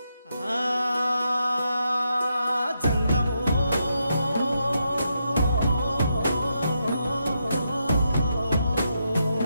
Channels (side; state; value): both; inverted; correlation -0.82